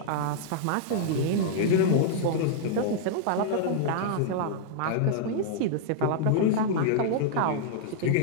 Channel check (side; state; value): both; different; correlation -0.02